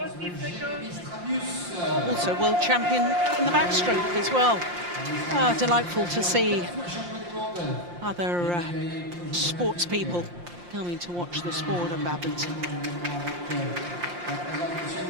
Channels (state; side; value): late; left; 5.7 ms